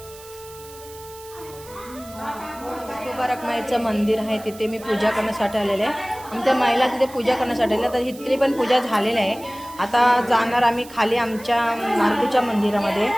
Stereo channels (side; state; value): right; noise; hiss, 19 dB below the sound